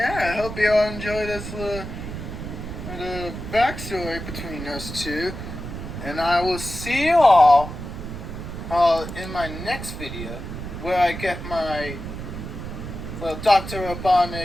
I hope you all enjoy this little backstory between us two. And I will see you all in my next video, where I get my Dr.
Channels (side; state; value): right; noise; rumble, 8 dB below the sound